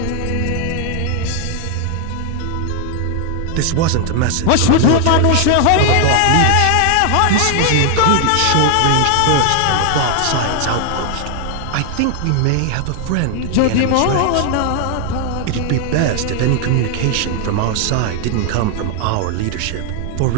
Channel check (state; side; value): different; both; correlation 0.00